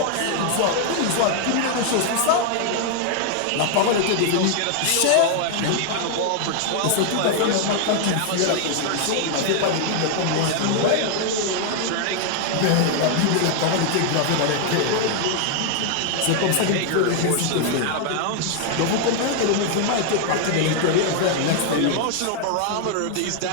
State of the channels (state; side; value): different; both; correlation 0.00